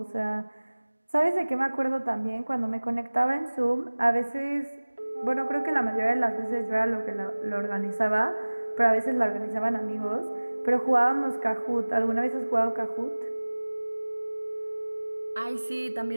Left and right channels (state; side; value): inverted; both; correlation -1.00